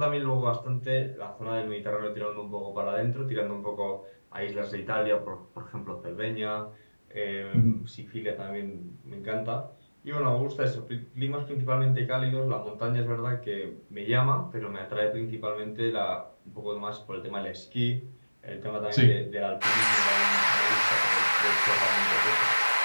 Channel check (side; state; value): both; inverted; correlation -1.00